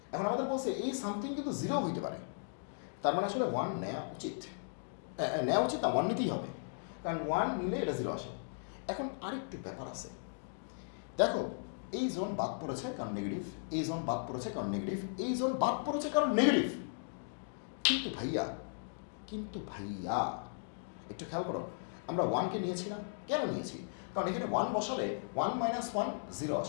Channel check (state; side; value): silent; right; digital silence